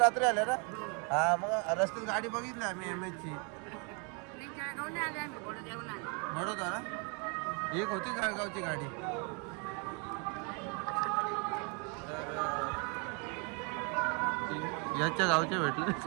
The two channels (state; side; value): quieter; left; 35.3 dB